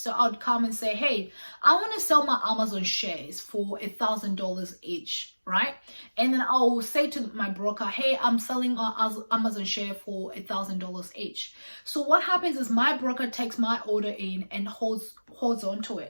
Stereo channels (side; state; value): both; inverted; correlation -1.00